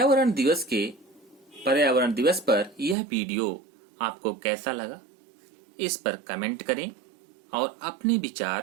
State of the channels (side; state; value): left; drops out; at 3.0 s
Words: दिवस पर यह वीडियो आपको कैसा लगा, इस पर कमेंट करें और अपने